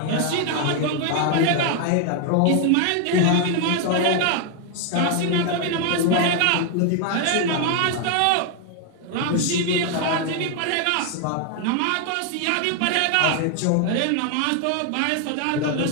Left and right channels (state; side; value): different; both; correlation 0.00